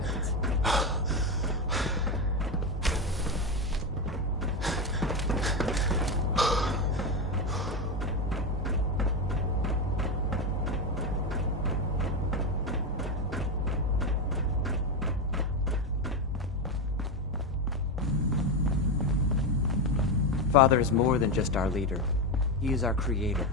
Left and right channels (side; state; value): both; normal; correlation 0.12